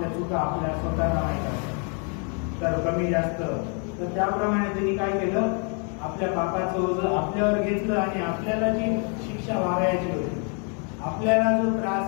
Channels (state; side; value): quieter; right; 39.3 dB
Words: चुका आपल्या स्वतःला माहीत असतात, तर कमी जास्त. तर त्याप्रमाणे त्यांनी काय केलं? आपल्या पापाचं ओझं आपल्यावर घेतलं आणि आपल्याला जी शिक्षा व्हावयाची होती, आपल्याला जो